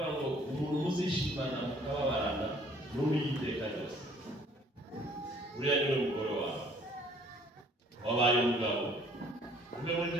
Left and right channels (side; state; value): both; normal; correlation 0.58